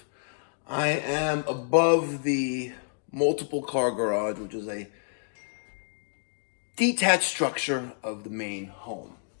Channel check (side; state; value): right; silent; digital silence